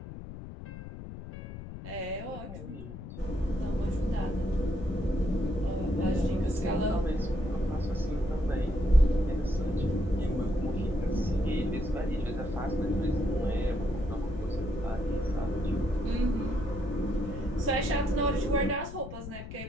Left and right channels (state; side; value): noise; left; rumble, 10 dB below the sound